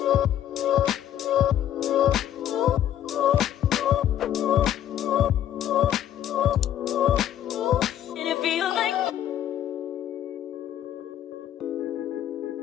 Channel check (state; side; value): quieter; right; 11.1 dB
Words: and it feels like